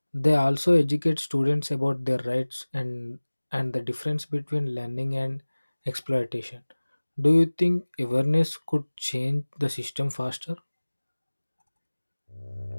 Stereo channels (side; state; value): both; inverted; correlation -1.00